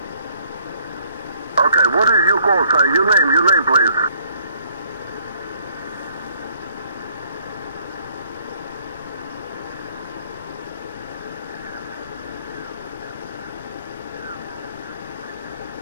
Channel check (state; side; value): inverted; both; correlation -0.63